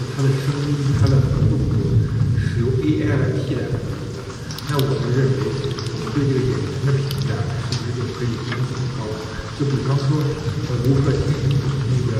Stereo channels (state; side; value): identical; both; correlation 1.00